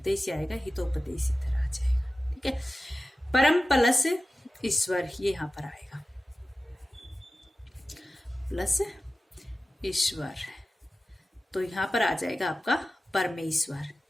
आएगा, हितोपदेश इधर आ जाएगा। ठीक है, परम प्लस ईश्वर, ये यहाँ पर आएगा, प्लस ईश्वर, तो यहाँ पर आ जाएगा आपका परमेश्वर।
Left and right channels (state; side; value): normal; both; correlation 0.95